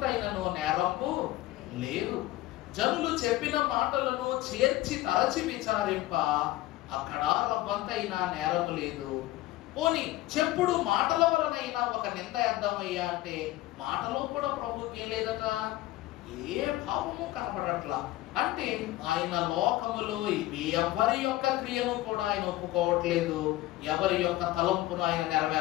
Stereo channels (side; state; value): right; quieter; 16.7 dB